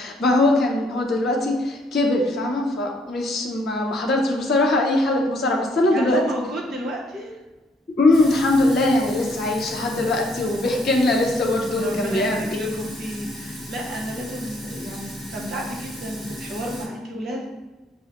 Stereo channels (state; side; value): normal; both; correlation 0.67